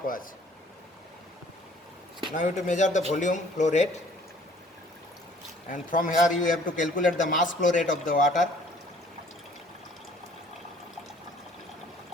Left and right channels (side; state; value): both; normal; correlation 0.56